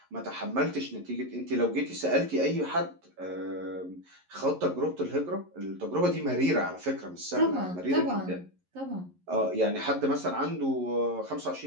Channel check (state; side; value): late; left; 11 ms